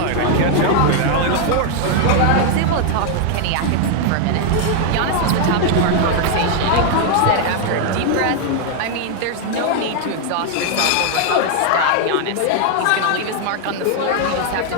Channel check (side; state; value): both; different; correlation 0.00